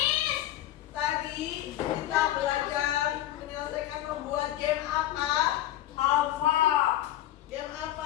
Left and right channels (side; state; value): right; quieter; 13.6 dB